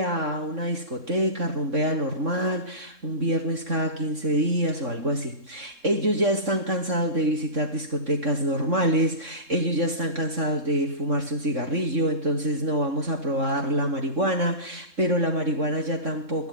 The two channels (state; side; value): late; left; 3.7 ms